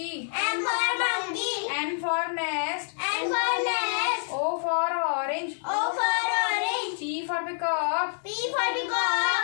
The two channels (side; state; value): right; silent; digital silence